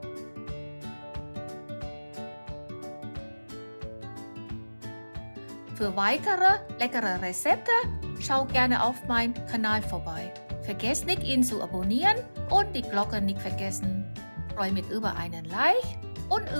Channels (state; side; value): inverted; both; correlation -1.00